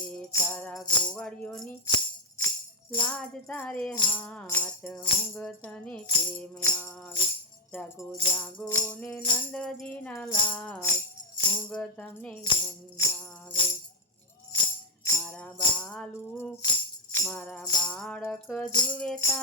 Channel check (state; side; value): normal; both; correlation 0.03